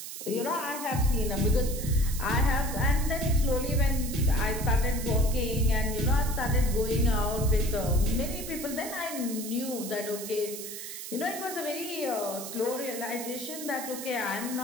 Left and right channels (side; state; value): right; noise; hiss, 9 dB below the sound